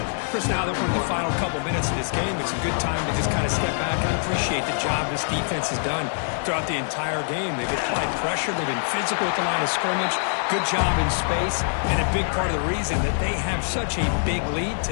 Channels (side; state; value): right; silent; digital silence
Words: Chris, now that we're in the final couple minutes of this game, it's a good time to just kind of step back and appreciate the job this defense has done throughout the entire game. They've applied pressure. They've been physical at the line of scrimmage. Good job in space, and a big part of the reason that they have such a big lead